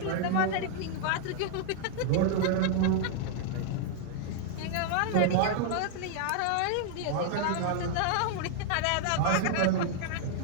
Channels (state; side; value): different; both; correlation 0.00